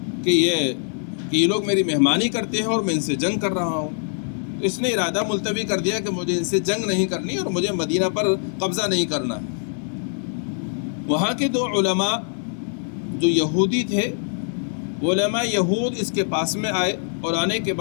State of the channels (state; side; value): silent; right; 63 dB below the other